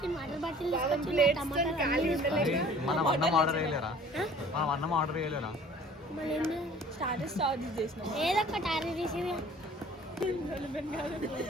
వాటర్ బాటిల్ తీసుకొచ్చి మనం అన్నం ఆర్డర్ చేయలేరా? మళ్ళీ స్టార్టర్స్ చేసినాం. ఏదో ఒకటి ఆర్డర్ చేసి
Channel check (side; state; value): both; normal; correlation 0.49